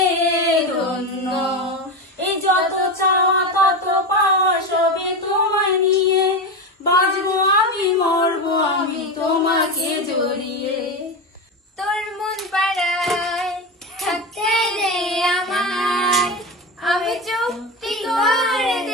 ধন্য। এই যত চাওয়া তত পাওয়া সবই তোমায় নিয়ে, বাঁচবো আমি মরবো আমি তোমাকে জড়িয়ে। তোর মন পাড়ায় থাকতে দে আমায়, আমি চুক্তি করে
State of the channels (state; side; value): normal; both; correlation 0.19